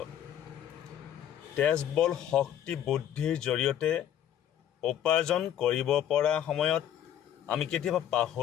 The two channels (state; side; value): quieter; right; 10.6 dB